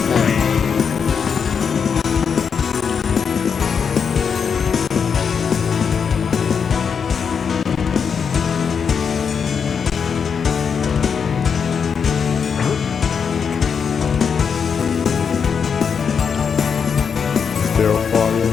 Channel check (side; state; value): right; quieter; 6.5 dB